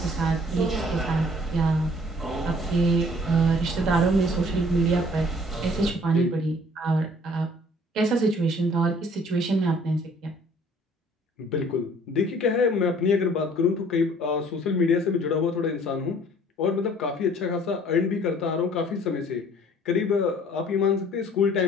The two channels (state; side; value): normal; both; correlation 0.55